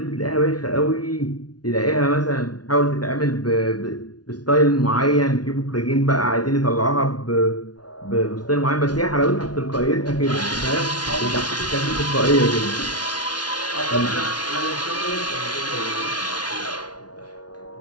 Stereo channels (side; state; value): right; late; 0.69 ms